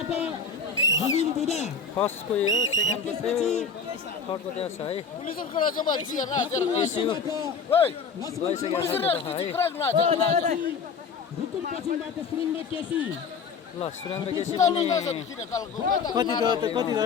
फर्स्टको यो सेकेन्डको थर्डको त्यहाँ छ है। ल सुरेन्द्र केसी कति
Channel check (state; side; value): quieter; right; 5.6 dB